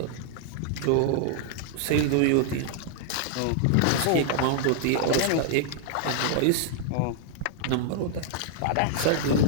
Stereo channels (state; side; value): different; both; correlation -0.01